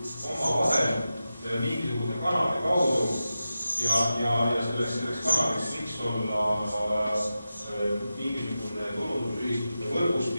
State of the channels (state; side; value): inverted; both; correlation -0.92